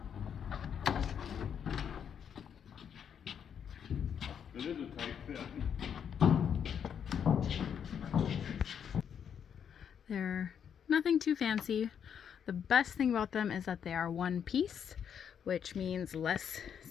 It is a tight fit. They're nothing too fancy. The best thing about them is that they are one piece, which means less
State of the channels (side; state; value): right; quieter; 8.0 dB